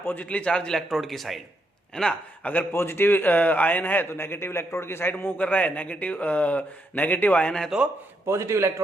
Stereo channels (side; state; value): both; normal; correlation 0.79